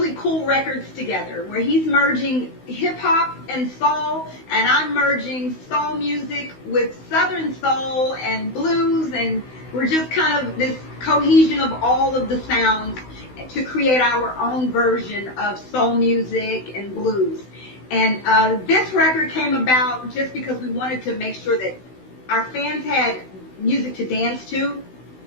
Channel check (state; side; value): late; right; 16 ms